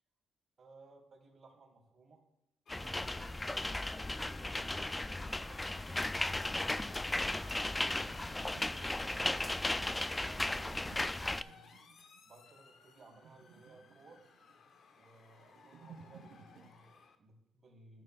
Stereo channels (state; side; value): normal; both; correlation 0.98